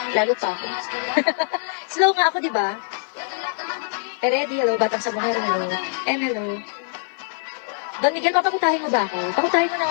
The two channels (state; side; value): silent; right; digital silence